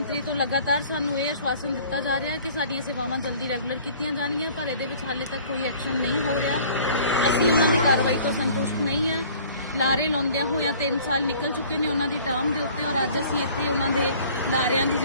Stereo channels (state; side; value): inverted; both; correlation -0.50